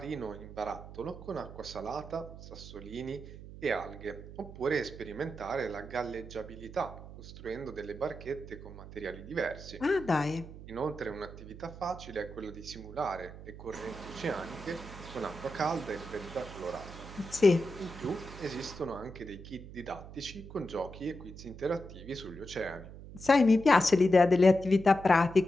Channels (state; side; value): noise; right; hum, 14 dB below the sound